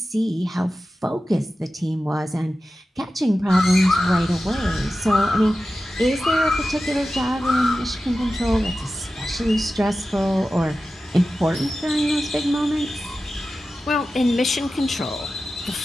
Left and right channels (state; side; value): normal; both; correlation 0.93